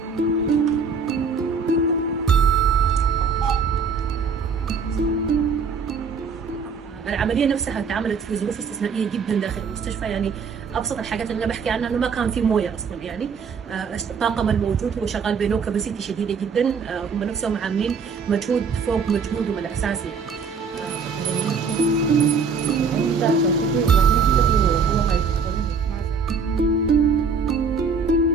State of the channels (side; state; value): left; quieter; 5.4 dB